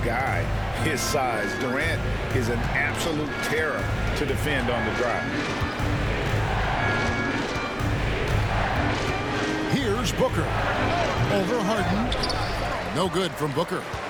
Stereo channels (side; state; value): both; identical; correlation 1.00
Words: guy his size. Durant is an absolute terror to defend on the drive. Here's Booker. Over Harden. No good from Booker.